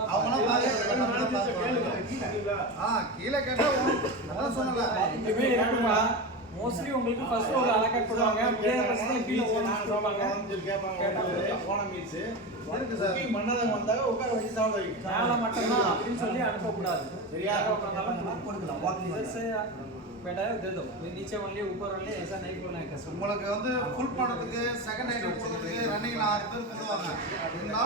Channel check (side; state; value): both; normal; correlation 0.22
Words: கீழே கேட்டா அதான் சொன்னல மோஸ்ட்லி உங்களுக்கு ஃபர்ஸ்ட் ஃப்ளோர்ல அலோகேட் பண்ணுவாங்க அப்படியே ஃபர்ஸ்ட்ல கீழ ஓடுவாங்க போன மீல்ஸ் இருக்கு சார் மன்னதம் வந்தாங்க உட்கார வச்சு சாப்பிட வைங்க மேல மட்டும் தான் அப்படினு சொல்லி அனுப்ப கூடாது சரியா உட்கார்ந்தாலும் கொடுக்கலாம் வாக்கிங் बेटा दे दो नीचे ओनली ऊपर ओनली ऐसा नहीं बोलना है कस्टमर உங்களுக்கு வந்து ஃபுல் பண்ணதுக்கு செகண்ட் ஐட்டம் கொடுக்கிறதுக்கு ரன்னிங்ல 6 பேர் கொடுவாங்க